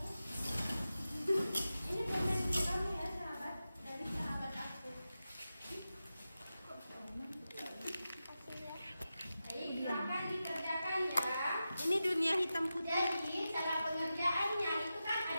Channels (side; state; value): both; inverted; correlation -0.92